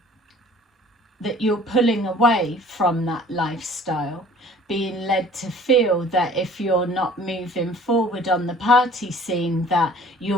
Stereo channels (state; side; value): normal; both; correlation 0.50